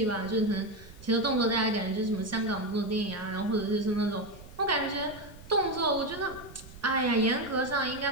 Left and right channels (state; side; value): noise; right; rumble, 18 dB below the sound